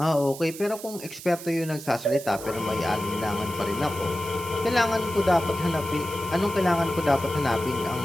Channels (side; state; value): right; noise; hiss, 13 dB below the sound